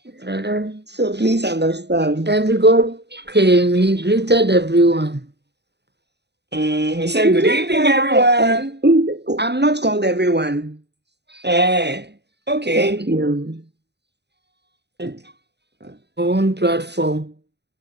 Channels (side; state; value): left; late; 0.49 ms